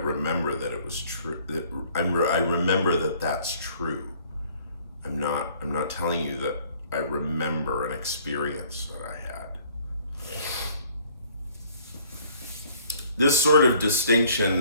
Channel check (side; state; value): both; inverted; correlation -0.58